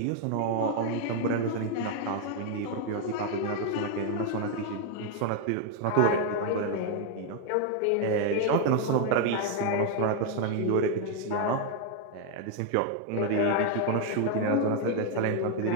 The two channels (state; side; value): different; both; correlation 0.01